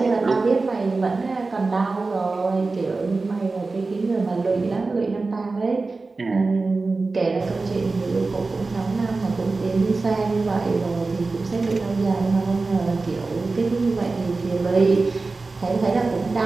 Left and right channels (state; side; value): quieter; left; 3.7 dB